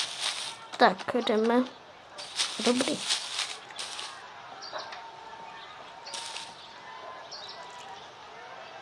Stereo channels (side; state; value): both; identical; correlation 1.00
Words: Tak, jdeme. Dobrý.